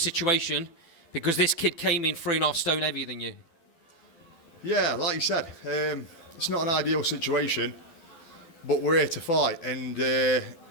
because this kid came in 3.5 stone heavier than you. Yeah, like you said, it's not an ideal situation, but we're here to fight. And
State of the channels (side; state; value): right; late; 12 ms